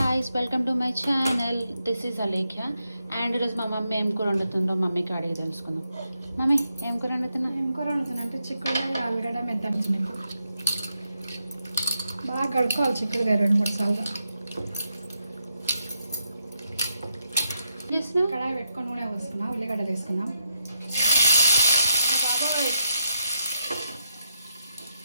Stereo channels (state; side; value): inverted; both; correlation -0.82